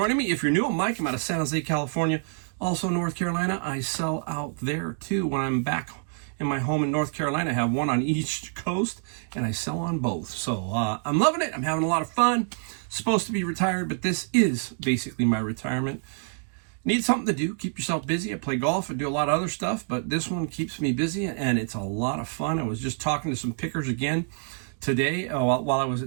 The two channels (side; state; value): left; silent; 60 dB below the other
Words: me. If you're new, I'm Mike. I'm out of San Jose, California. Also North Carolina. I sell out there too when I'm back in my home in North Carolina. I have one on each coast and I sell on both. So I'm loving it. I'm having a lot of fun. Supposed to be retired, but this is basically my retirement. Need something to do. Keep yourself busy. I play golf. I do a lot of other stuff, but this one keeps me busy and it's a lot of fun. I was just talking to some pickers again today while I was